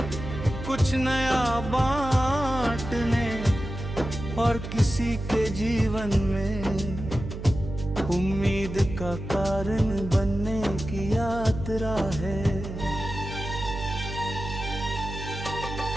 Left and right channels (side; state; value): right; noise; hum, 8 dB below the sound